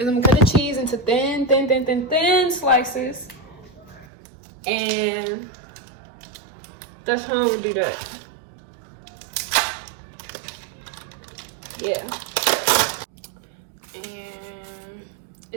I'm gonna cut the cheese into thin slices, and that's how I'm gonna do that. Yeah, and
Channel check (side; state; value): left; drops out; at 4.0 s